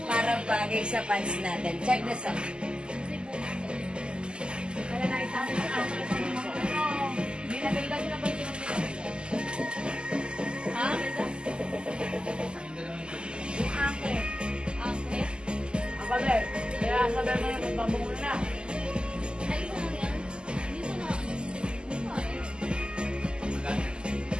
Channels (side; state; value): left; late; 0.049 ms